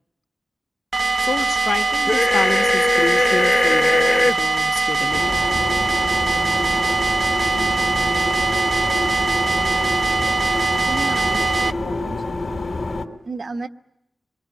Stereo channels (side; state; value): both; normal; correlation 0.93